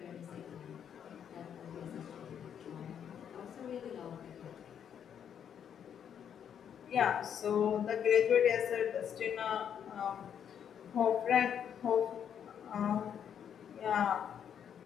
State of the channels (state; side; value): quieter; right; 8.5 dB